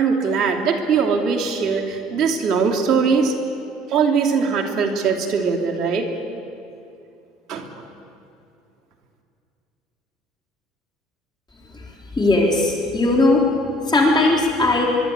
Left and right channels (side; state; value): both; normal; correlation 0.56